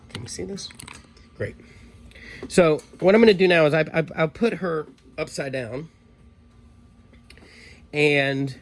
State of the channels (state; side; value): identical; both; correlation 1.00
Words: Can you see this? Great. So what I'm going to do now is I'll put her upside down, and